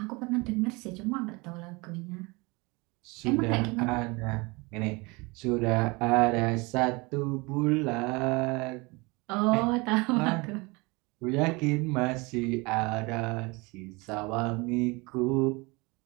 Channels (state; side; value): quieter; left; 26.1 dB